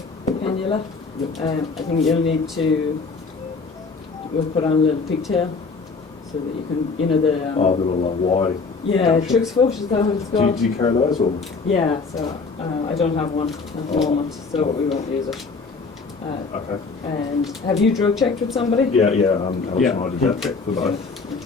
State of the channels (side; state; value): right; quieter; 4.5 dB